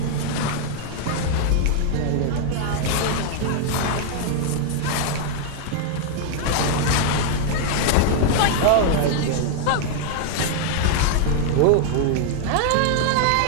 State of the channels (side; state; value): both; different; correlation 0.00